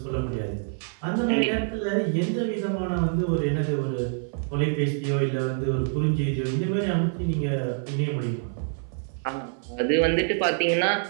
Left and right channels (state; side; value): silent; left; 57 dB below the other